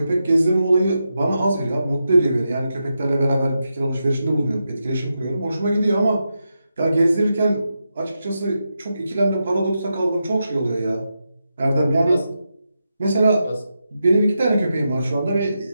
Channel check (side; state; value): both; inverted; correlation -0.87